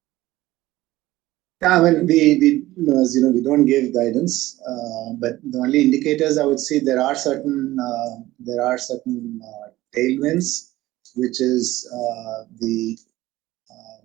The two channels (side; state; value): left; quieter; 16.9 dB